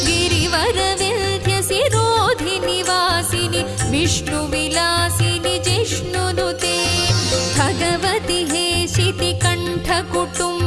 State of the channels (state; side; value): identical; both; correlation 1.00